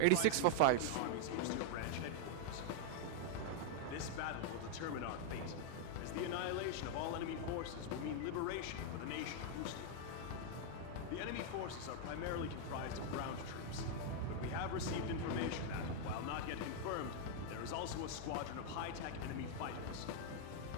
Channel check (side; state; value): both; different; correlation 0.00